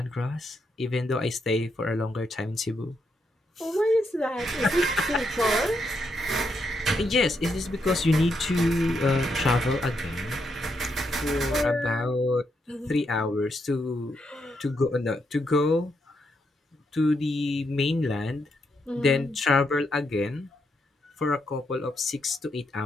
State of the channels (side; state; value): both; normal; correlation 0.80